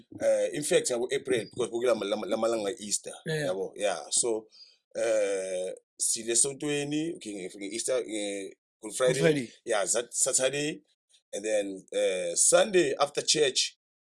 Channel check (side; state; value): both; identical; correlation 1.00